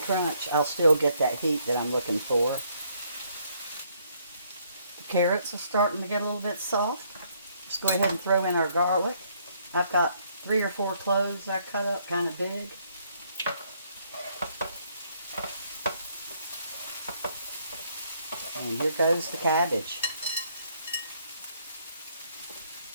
I'll still get that heat that I'm looking for. The carrots are starting to get a little bit soft. Let's go ahead and throw in our garlic. I've got 3 or 4 cloves I cut up kind of big. And here goes the cabbage.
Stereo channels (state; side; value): inverted; both; correlation -0.69